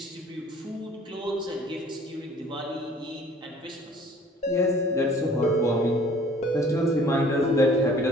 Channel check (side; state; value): both; normal; correlation 0.52